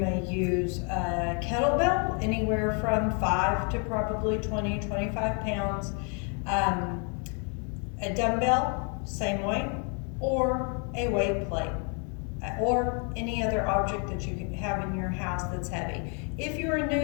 use a kettlebell, anywhere from 5 to probably 20, 25 pounds. A dumbbell, same weight, or a weight plate, or any other object that you can have in your house that's heavy. If you are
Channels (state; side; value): quieter; right; 38.1 dB